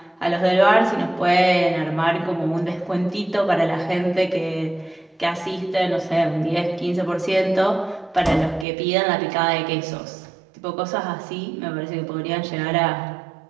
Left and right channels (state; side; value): drops out; left; at 8.7 s